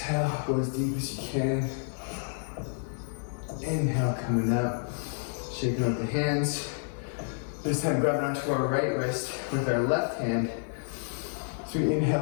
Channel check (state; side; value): silent; right; digital silence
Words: go as deep as you can. Inhale, coming up, shaking out the hands. This time grab onto our right wrist with our left hand. So we